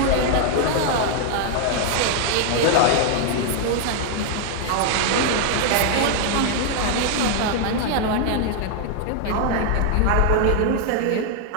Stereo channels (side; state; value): both; different; correlation 0.00